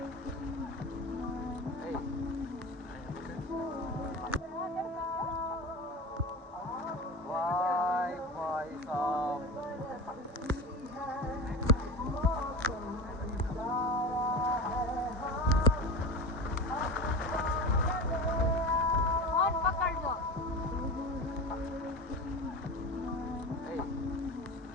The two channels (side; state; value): both; normal; correlation 0.28